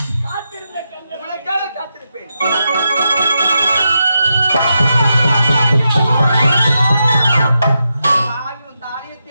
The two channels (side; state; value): both; inverted; correlation -0.86